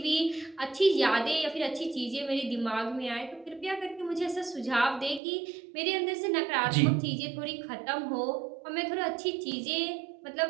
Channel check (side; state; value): left; drops out; at 5.2 s